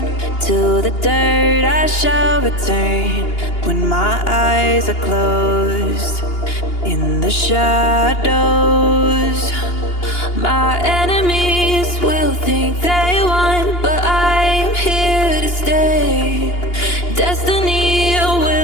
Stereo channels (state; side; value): late; right; 2.8 ms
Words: to the dirt I shall return. When my eyes are closed in the shadows, my enemies will think they won, but I'm here to stay. Destiny